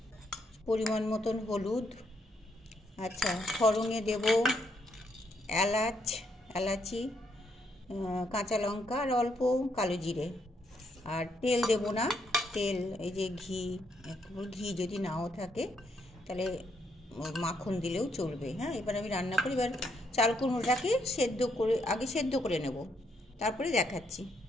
পরিমাণ মতন হলুদ। আচ্ছা, ফোড়নে দেব এলাচি, কাঁচা লঙ্কা আর অল্প কালো জিরে। আর তেল দেব না, তেল এই যে ঘি যদি নাও থাকে তাহলে মাখন দিলেও চলবে। হ্যাঁ, এবার আমি রান্না করি। এবার চাল কুমড়োটাকে আগে সেদ্ধ করে নেব, তারপরে দেখাচ্ছি।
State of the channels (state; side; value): normal; both; correlation 0.75